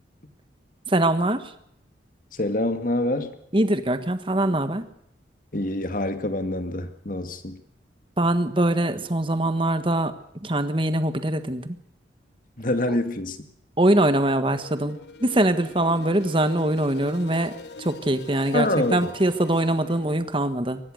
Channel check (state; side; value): normal; both; correlation 0.59